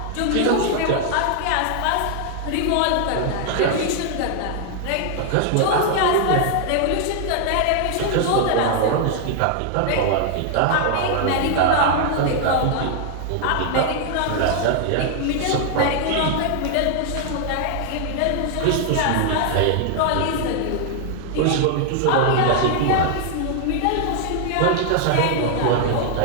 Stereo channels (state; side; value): different; both; correlation 0.00